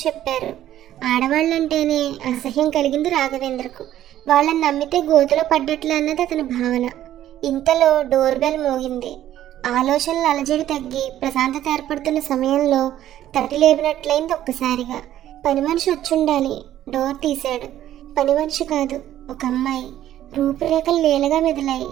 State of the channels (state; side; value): quieter; left; 12.4 dB